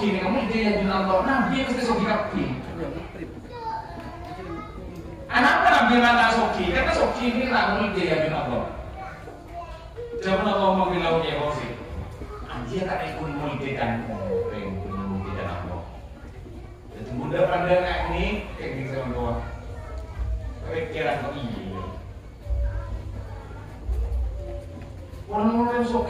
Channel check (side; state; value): both; identical; correlation 1.00